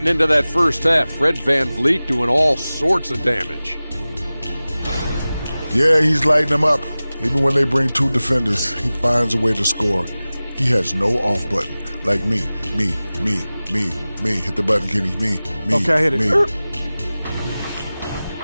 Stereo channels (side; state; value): both; inverted; correlation -0.97